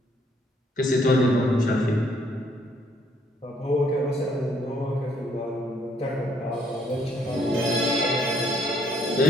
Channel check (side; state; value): both; normal; correlation 0.68